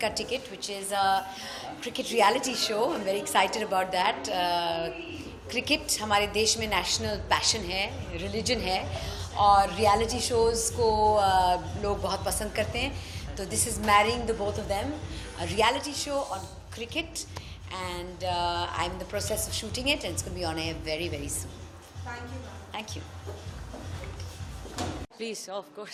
Ticket, which is a cricket reality show. I'm very excited about that. Cricket हमारे देश में national passion है, religion है, और reality shows को लोग बहुत पसंद करते हैं. तो this is marrying the both of them, a reality show on cricket, and I'm in the process of shooting it, and it's going to be on air very, very soon. Thank you, ma'am. Thank you. Please, of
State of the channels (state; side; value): identical; both; correlation 1.00